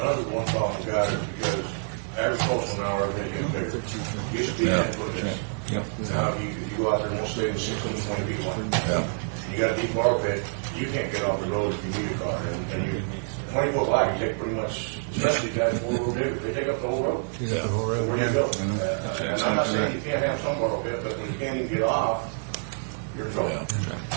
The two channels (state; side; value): silent; left; digital silence